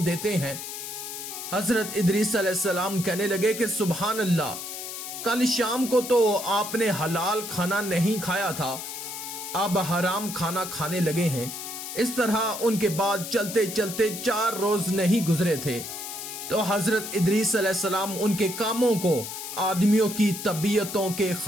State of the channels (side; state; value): left; noise; hiss, 8 dB below the sound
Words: دیتے ہیں؟ حضرت ادریس علیہ السلام کہنے لگے کہ سبحان اللہ، کل شام کو تو آپ نے حلال کھانا نہیں کھایا تھا، اب حرام کھانا کھانے لگے ہیں۔ اس طرح ان کے بعد چلتے چلتے 4 روز نہیں گزرے تھے تو حضرت ادریس علیہ السلام ان کے کاموں کو آدمیوں کی طبیعتوں کے